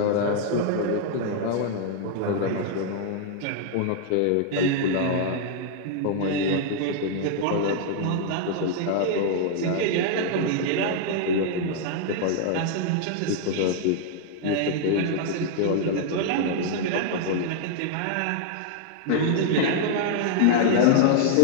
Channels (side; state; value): both; different; correlation -0.01